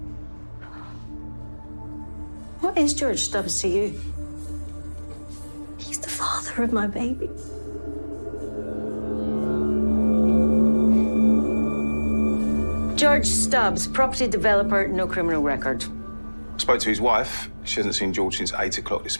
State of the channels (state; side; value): inverted; both; correlation -1.00